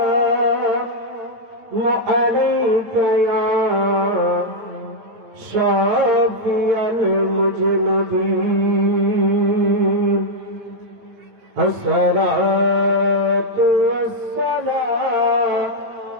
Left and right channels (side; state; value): left; late; 9.1 ms